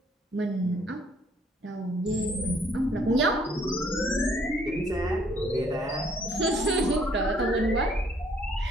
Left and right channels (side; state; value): both; normal; correlation 0.63